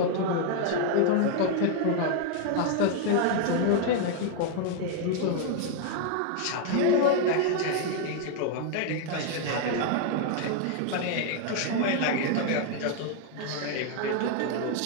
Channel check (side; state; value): both; different; correlation 0.00